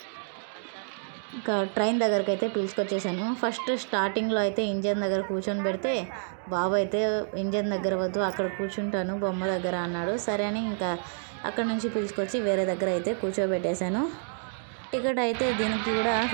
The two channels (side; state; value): left; silent; digital silence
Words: ఇంకా ట్రైన్ దగ్గరికి అయితే పిలుచుకొచ్చేసాను. ఫస్ట్ స్టార్టింగ్లో అయితే ఇంజన్ దగ్గర కూర్చొని పెడితే బాబు అయితే ఇంజన్ దగ్గర వద్దు, అక్కడ కూర్చుంటాను బొమ్మ దగ్గర అన్నాడు. సరే అని ఇంకా అక్కడ నుంచి పిలుచుకొచ్చి వేరే దగ్గర అయితే కూర్చోబెట్టేశాను. టికెట్ అయితే దీనికి కూడా